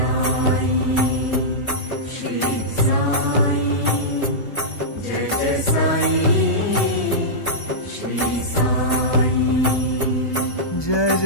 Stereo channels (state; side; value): late; right; 1.2 ms